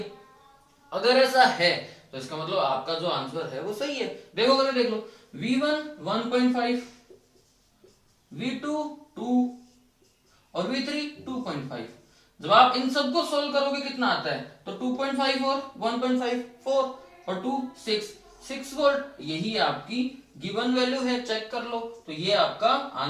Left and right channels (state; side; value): identical; both; correlation 1.00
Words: अगर ऐसा है तो इसका मतलब आपका जो आंसर है वो सही है। देखो अगर देख लो, V1 1.5, V2 2 और V3 2.5। जब आप इन सबको सोल्व करोगे कितना आता है, तो 2.5 और 1.5 4 और 2 6 वोल्ट, यही आपकी गिवन वैल्यू है, चेक कर लो। तो ये आपका